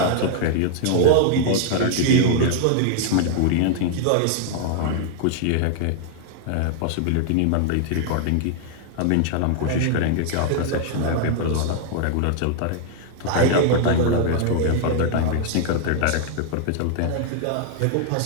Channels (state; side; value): different; both; correlation 0.00